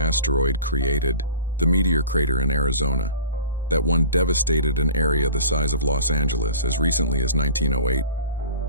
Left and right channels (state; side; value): inverted; both; correlation -0.41